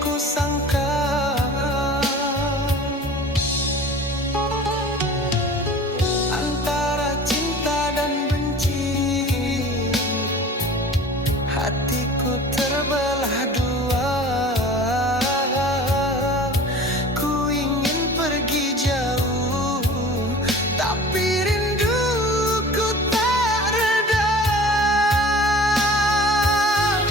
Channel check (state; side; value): normal; both; correlation 0.42